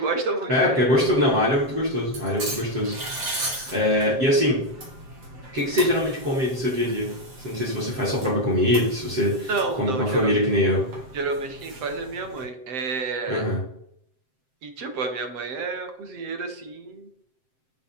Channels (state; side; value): late; left; 7.7 ms